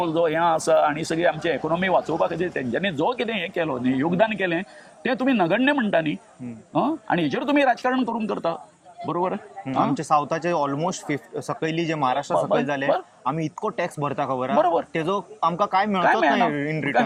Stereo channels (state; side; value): identical; both; correlation 1.00